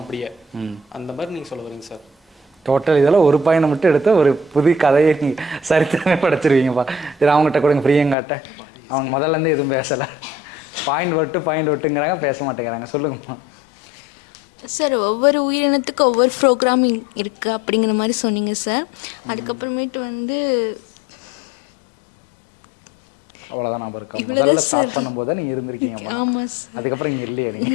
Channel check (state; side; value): drops out; right; at 8.2 s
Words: அப்படியே. அந்த மாதிரி நீங்கள் சொல்ல வரீங்க சார்? டோட்டல் இதெல்லாம் ஒரு பாயிண்ட் மட்டும் எடுத்து ஒரு புது கதையை நீங்கள் சரித்திரமே படைச்சிருவீங்கப்பா. இது அவங்ககிட்ட கொடுங்க, பிரியங்காட்ட. அவங்க முதல்லேருந்து எதுவும் பேசலை, பாயிண்ட் விட்டுங்கிறாங்க, பேச மாட்டேங்கிறாங்க. சொல்லுங்கம்மா. சார், ஒவ்வொரு உயிரினத்துக்கும் ஒவ்வொரு ப்ரோக்ராமிங் இருக்குது அப்படிங்கிற மாதிரி சொன்னீங்க சார். அதுக்கப்புறமேட்டு வந்து அவ்வளோதான் ஞாபகம் இருக்கா? முதல்ல ஸ்டார்ட் பண்ணும்போது தான் நீங்கள் இருந்திருக்கீங்கம்மா. ஆமாம் சார். அதுக்கப்புறம் இங்கே இல்லையா